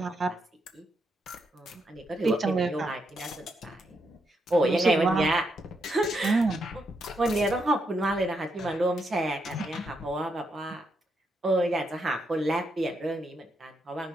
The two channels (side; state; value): both; normal; correlation 0.80